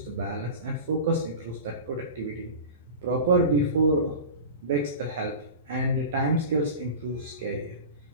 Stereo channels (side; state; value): both; inverted; correlation -0.31